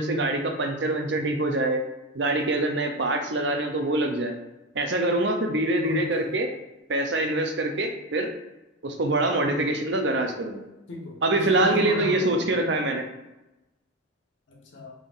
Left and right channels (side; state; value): both; normal; correlation 0.15